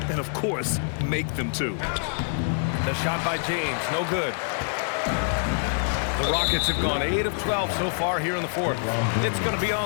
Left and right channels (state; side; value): silent; right; 58 dB below the other